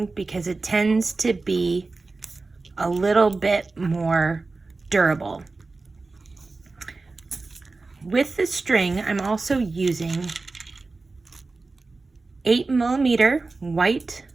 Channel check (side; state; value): left; quieter; 3.7 dB